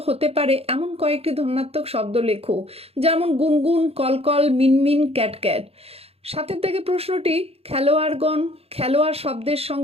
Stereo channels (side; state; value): left; late; 0.29 ms